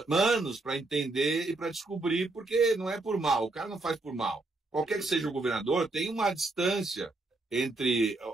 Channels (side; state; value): left; quieter; 3.1 dB